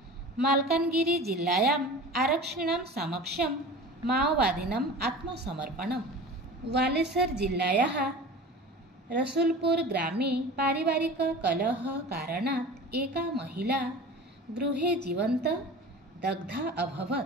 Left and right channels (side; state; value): both; normal; correlation 0.37